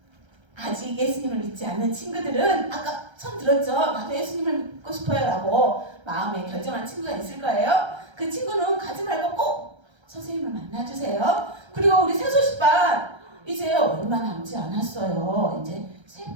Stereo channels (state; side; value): late; left; 1.3 ms